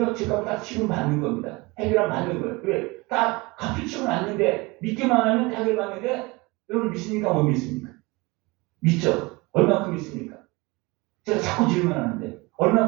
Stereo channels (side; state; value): left; quieter; 24.4 dB